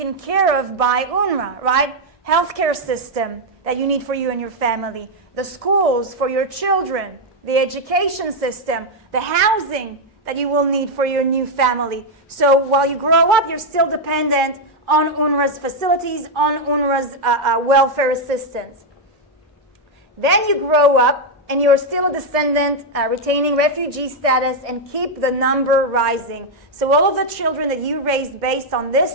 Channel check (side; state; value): both; normal; correlation 0.01